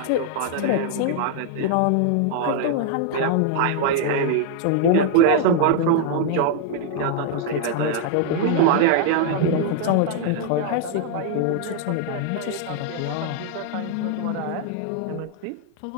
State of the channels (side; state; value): both; different; correlation 0.00